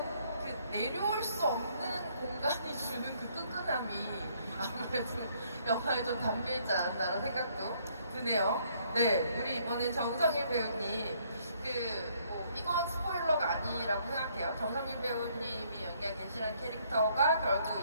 그 내려올 수 없는 공간이 주는 그 끈끈함이 아무래도 영화에 좀 담겨있지 않았나라는 생각도 드네요. 네, 우리 이번엔 정성일 배우님, 이건 스포일러가 아니라고 생각해요. 정성일 배우님이 연기한 겐시라는 캐릭터가 결국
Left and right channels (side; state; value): both; inverted; correlation -0.66